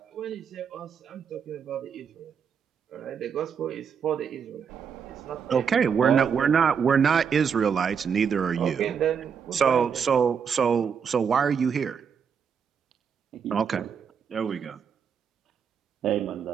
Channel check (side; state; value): left; quieter; 6.9 dB